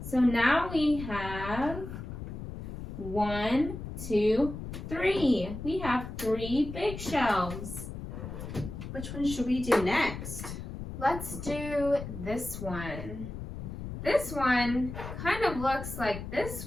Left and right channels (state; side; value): noise; left; rumble, 8 dB below the sound